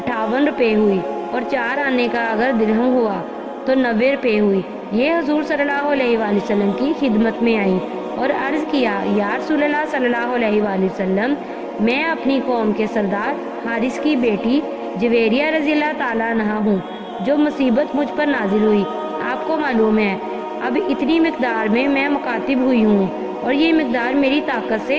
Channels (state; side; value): identical; both; correlation 1.00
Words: روپے ہوئی اور 4 آنے کا اگر درہم ہوا تو 90 روپے ہوئی۔ یہ حضور صلی اللہ علیہ وآلہ وسلم کی خدمت میں آئی اور عرض کیا، یا رسول اللہ صلی اللہ علیہ وآلہ وسلم، میں اپنی قوم کے سردار حارث کی بیٹی جویریہ رضی اللہ تعالیٰ عنہ ہوں۔ جو مصیبت مجھ پر نازل ہوئی آپ کو معلوم ہے، اب اتنی مقدار میں مکاتب ہوئی ہوں اور یہ مقدار میری طاقت